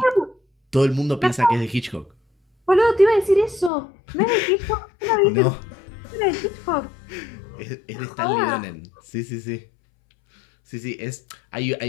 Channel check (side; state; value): right; drops out; at 3.7 s